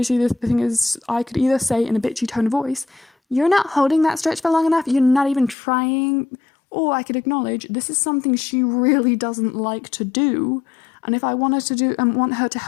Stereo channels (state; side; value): drops out; right; at 5.6 s